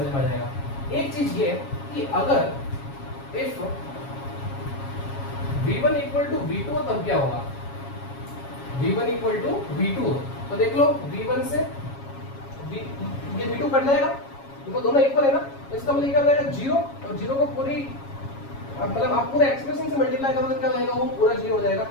में आ जाएगा। एक चीज ये कि अगर if v1 equal to v2 तब क्या होगा, v1 इक्वल टू v2 तो देख लो v1 से ये v2 कट जाएगा, देखो दोनों इक्वल है ना, तो इसका मतलब क्या हो जाएगा 0, और 0 को पूरी मतलब आप पूरे एक्सप्रेशन से मल्टीप्लाई करोगे क्या हो जाएगा, वो पूरा 0 हो जाएगा।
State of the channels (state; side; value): late; right; 7.3 ms